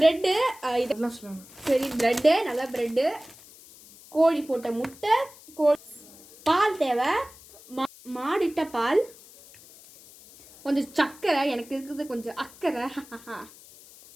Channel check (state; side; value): noise; left; hiss, 22 dB below the sound